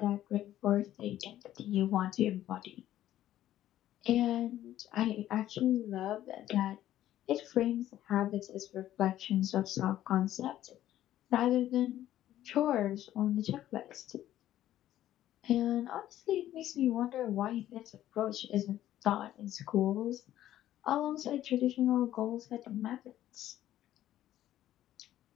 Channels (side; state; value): right; quieter; 12.9 dB